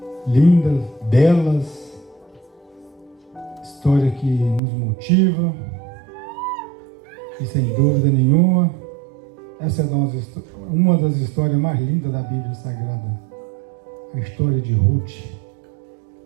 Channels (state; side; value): drops out; left; at 4.6 s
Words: lindas, belas, história que nos motiva, e sem dúvida nenhuma, essa é uma das histórias mais lindas da Bíblia Sagrada, a história de Ruth,